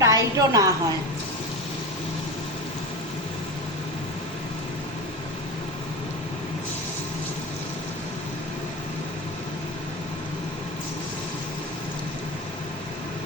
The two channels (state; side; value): normal; both; correlation 0.25